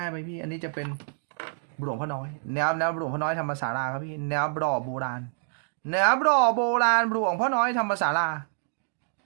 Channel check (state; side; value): silent; left; digital silence